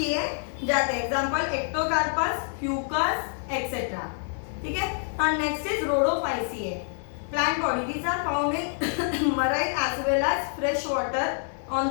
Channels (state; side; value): silent; right; 60 dB below the other